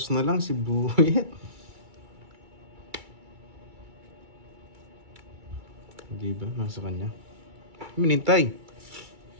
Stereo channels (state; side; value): late; left; 2.3 ms